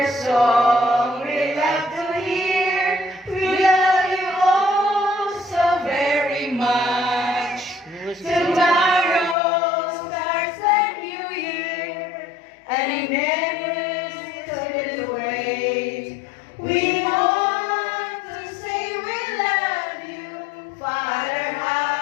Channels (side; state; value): right; drops out; at 9.3 s